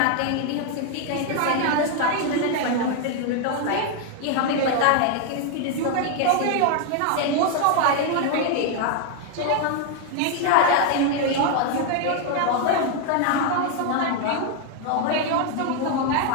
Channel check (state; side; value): different; both; correlation 0.01